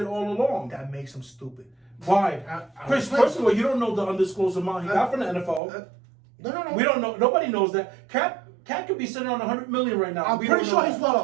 all along. That makes him stupid. Why? Chris, first of all, you don't know the undisclosed amount he got from the NFL. No. We don't know. Nobody knows that. Cat could be sitting on $100 million right now. I'm pretty sure he's well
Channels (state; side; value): drops out; left; at 5.6 s